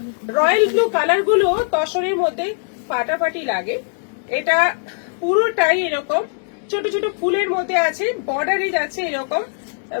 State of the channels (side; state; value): right; silent; 66 dB below the other